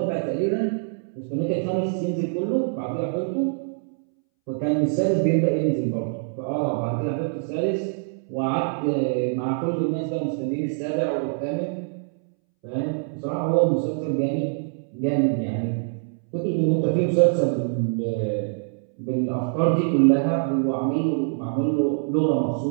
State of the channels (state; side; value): silent; left; 62 dB below the other